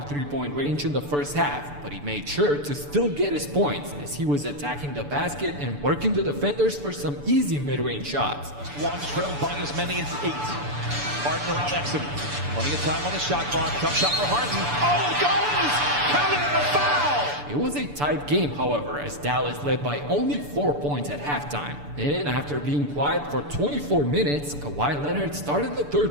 three-point range in the first half, but he made sure to still get his points as he was attacking the basket and working the defenders for some easy mid-range shots. One trailed by as many as 8. Harden around Exum. Plenty of time on the shot clock. Tough shot for Harden. Oh, it goes! Counted and a foul! It was a tight game, however, as Dallas led by only 4 points at halftime. And after being quiet for 24 minutes, Kawhi Leonard started the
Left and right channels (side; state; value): left; late; 6.9 ms